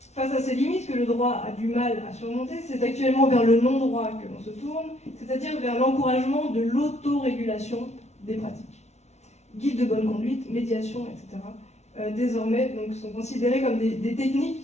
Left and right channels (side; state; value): right; late; 0.32 ms